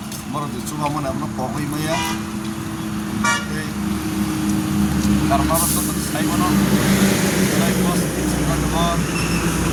বড় যে চুবা মনে আমরা পগই মাইয়া এই কারণার তো সাইবনো প্লাই বস সিমা দবর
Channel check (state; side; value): identical; both; correlation 1.00